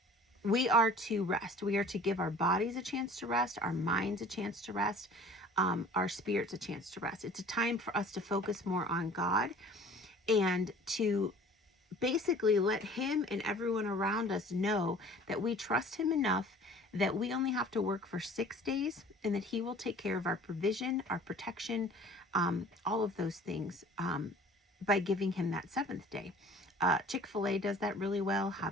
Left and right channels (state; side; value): normal; both; correlation 0.47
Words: we are to rest. We are to give our bodies a chance to rest, our minds a chance to rest, our spirits a chance to rest. It's a time for us to focus more on God and to basically let Him and everyone around us know that we trust Him enough that we only have to work for 6 days, and that He will take care of our provision, our protection, all of those things, by giving Him that 7th day. Chick-fil-A does that really well.